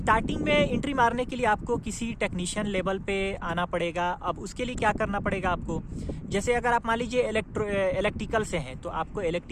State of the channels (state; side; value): identical; both; correlation 1.00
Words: में एंट्री मारने के लिए आपको किसी टेक्नीशियन लेवल पे आना पड़ेगा। अब उसके लिए क्या करना पड़ेगा आपको, जैसे अगर आप मान लीजिए इलेक्ट्रिकल से हैं तो आपको